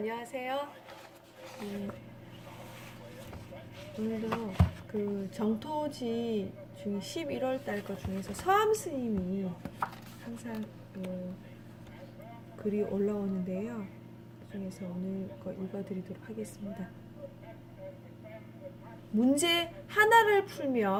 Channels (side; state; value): both; identical; correlation 1.00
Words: 오늘도 그 정토지 중에 11월 달 거 중에서 서암 스님이 항상 글이 올라오는데요. 그 중에서 오늘 거 읽어드리도록 하겠습니다. 문제 하나를